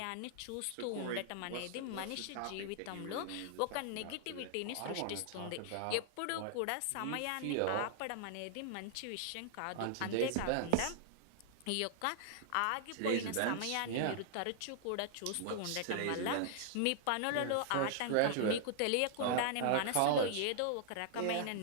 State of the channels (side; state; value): both; different; correlation -0.01